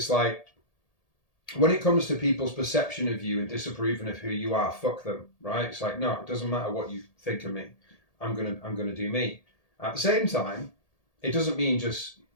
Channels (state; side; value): late; right; 1.8 ms